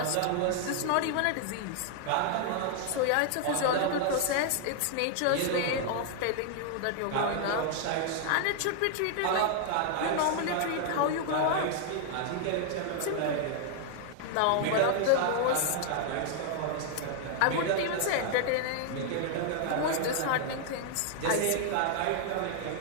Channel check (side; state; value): both; different; correlation 0.00